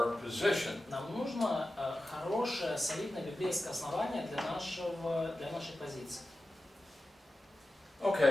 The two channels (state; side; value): normal; both; correlation 0.93